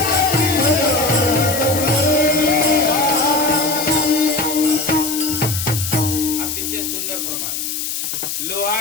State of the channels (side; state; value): left; noise; hiss, 4 dB below the sound